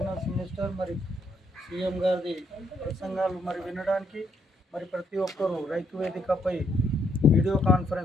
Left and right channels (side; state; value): both; normal; correlation 0.74